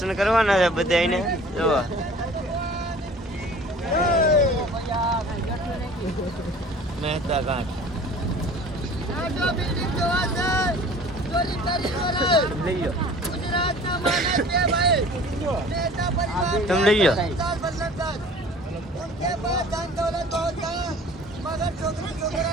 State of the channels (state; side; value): normal; both; correlation 0.46